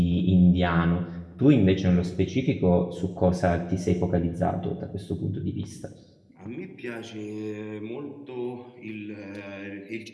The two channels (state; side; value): identical; both; correlation 1.00